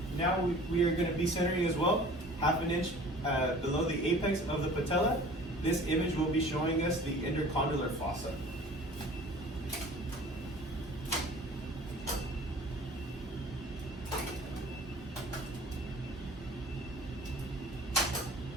Now we are going to be centering as well, 1/2 inch below the apex of the patella. This image will be showing us the intercondylar fossa.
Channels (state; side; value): normal; both; correlation 0.46